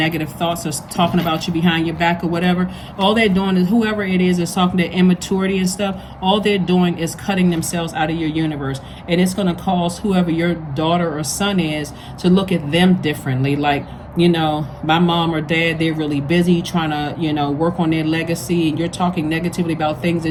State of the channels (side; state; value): both; identical; correlation 1.00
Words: thoughts or talking about you behind your back or whatever, all they're doing is, whoever it is talking to immaturity and stuff, all they're doing is cutting themselves out of your universe. And it's going to cause whoever your daughter or son is to look at them differently. Like, you know, my mom or dad, they're really busy trying to, you know, work on their legacy, and you're talking negatively about things